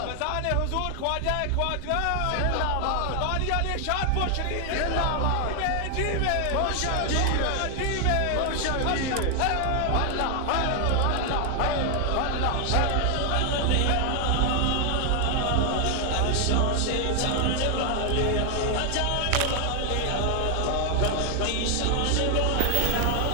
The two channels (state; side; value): different; both; correlation 0.00